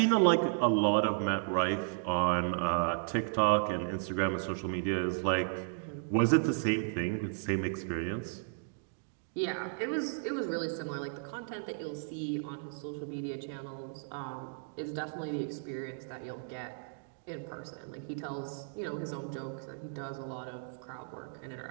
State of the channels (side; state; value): left; silent; digital silence